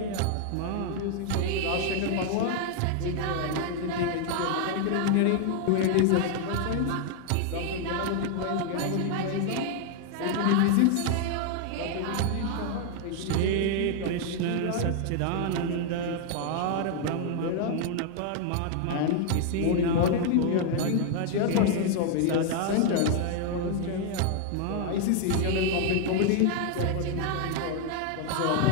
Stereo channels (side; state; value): both; different; correlation 0.00